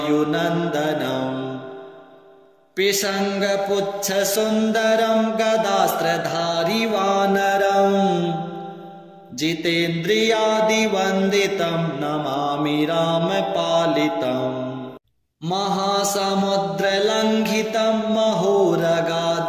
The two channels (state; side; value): identical; both; correlation 1.00